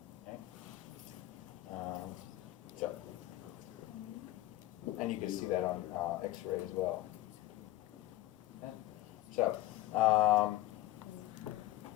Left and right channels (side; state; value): right; quieter; 16.0 dB